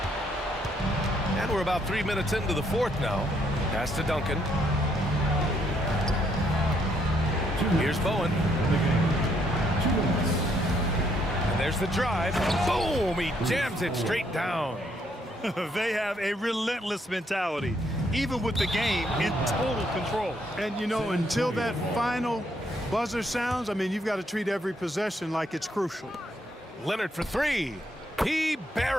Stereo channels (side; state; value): both; normal; correlation 0.72